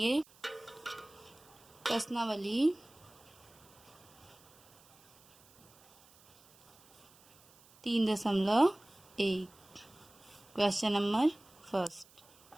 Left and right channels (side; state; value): right; noise; hiss, 27 dB below the sound